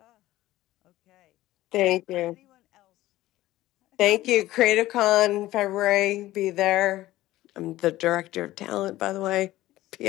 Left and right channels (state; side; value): quieter; right; 16.0 dB